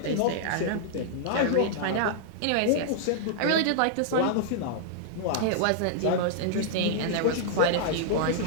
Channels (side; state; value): both; different; correlation -0.01